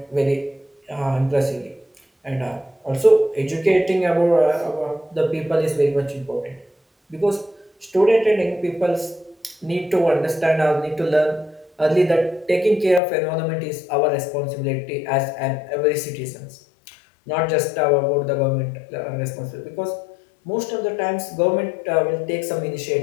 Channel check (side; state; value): right; drops out; at 13.0 s